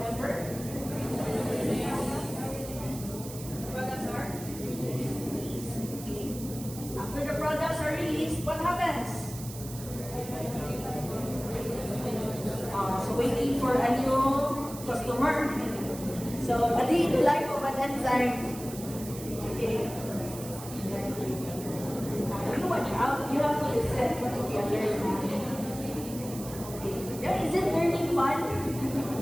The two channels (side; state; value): right; noise; hiss, 13 dB below the sound